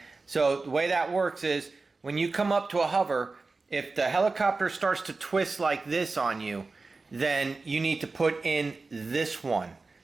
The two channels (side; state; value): left; quieter; 3.8 dB